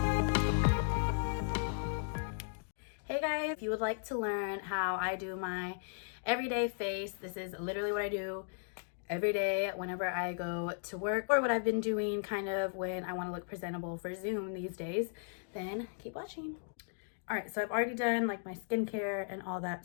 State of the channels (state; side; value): silent; right; digital silence